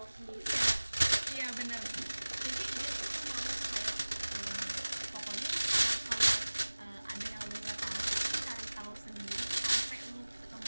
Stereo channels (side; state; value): both; inverted; correlation -1.00